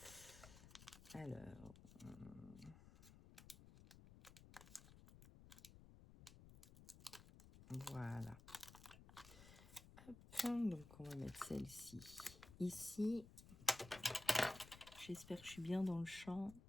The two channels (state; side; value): noise; left; rumble, 17 dB below the sound